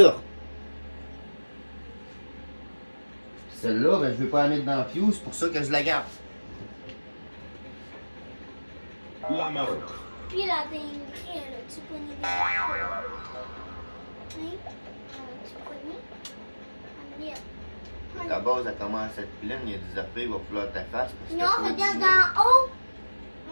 Celle-là, ben, je vais pas la mettre dans Fuse, c'est pour ça que je la garde. La Marot. Puis la dinguerie, elle a-tu pogné des cartes? Hein? Tu pogné? Ah, merde. Ta base, elle commence à être pleine, il y a des affaires, il va falloir ta face. Parce que Non, faut regarde du- en haut.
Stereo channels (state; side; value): inverted; both; correlation -1.00